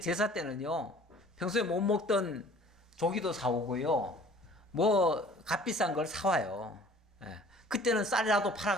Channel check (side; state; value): both; normal; correlation 0.50